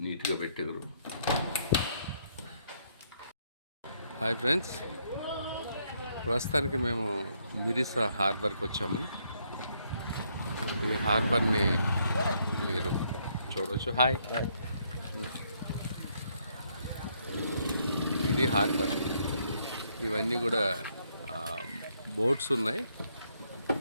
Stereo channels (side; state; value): both; inverted; correlation -0.72